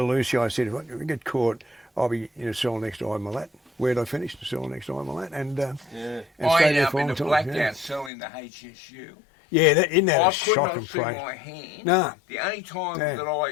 Lucy, if I get caught, I'll be in a cell next to Imalat. Where'd I finish? The cell next to Imalat, and stayed there for a long time. I ended up in a blacked out cell in the HSU. Yeah, isn't that a shocking place? I could not see my hand. No. The only time that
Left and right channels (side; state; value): right; drops out; at 8.1 s